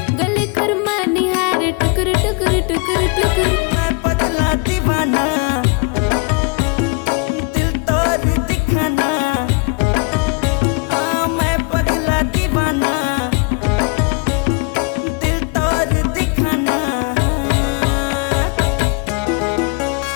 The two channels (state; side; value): quieter; right; 31.5 dB